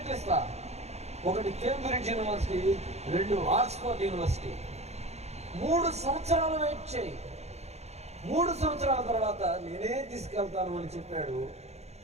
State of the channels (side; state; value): left; late; 0.31 ms